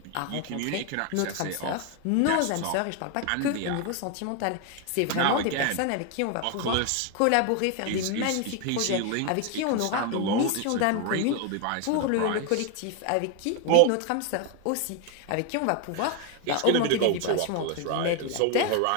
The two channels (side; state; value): both; different; correlation 0.01